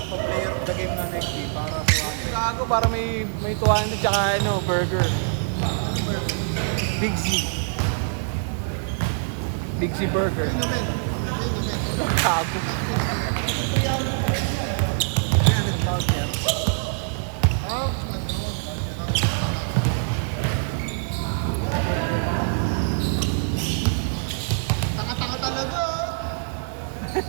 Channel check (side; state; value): left; silent; 62 dB below the other